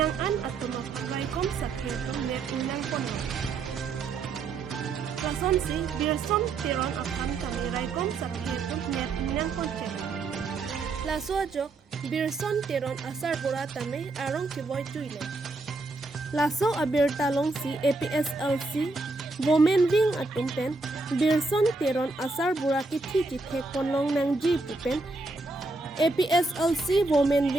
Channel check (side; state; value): left; quieter; 3.5 dB